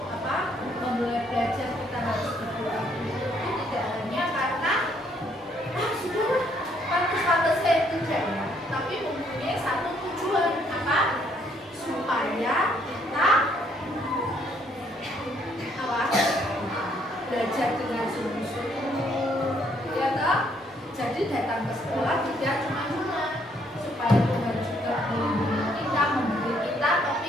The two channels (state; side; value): normal; both; correlation 0.68